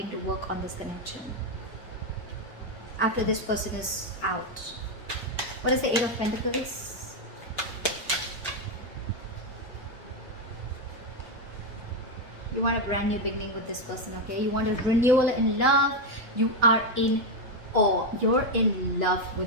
to work on this connection. After this person is out. What is the Eight of Pentacles? You want a brand new beginning with this person, okay? You want a renewal in love. You are in awe. You're in love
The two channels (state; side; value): normal; both; correlation 0.06